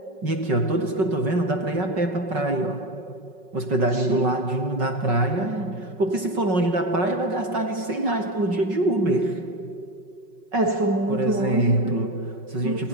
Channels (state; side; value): late; left; 5.4 ms